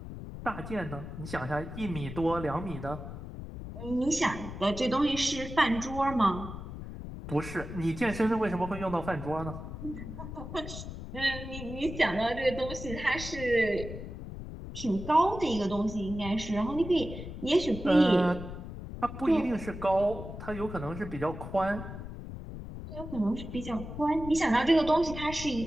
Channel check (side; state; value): left; noise; rumble, 9 dB below the sound